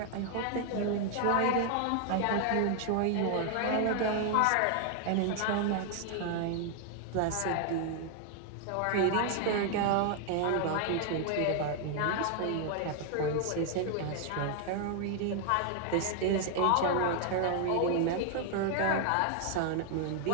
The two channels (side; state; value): both; different; correlation 0.00